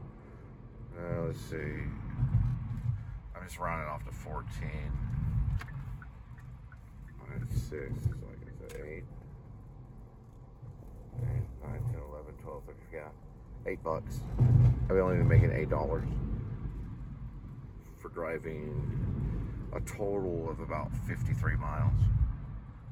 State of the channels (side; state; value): both; identical; correlation 1.00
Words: Let's see. I'm just rounding off to 14. That's 6. So I guess 8. 9, 10, 11, 12, 13, yeah. $8. I've only been making $8 for driving a total of about 53 miles.